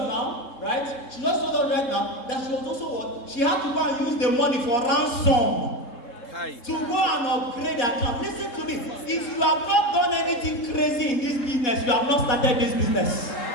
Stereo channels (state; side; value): late; right; 3.7 ms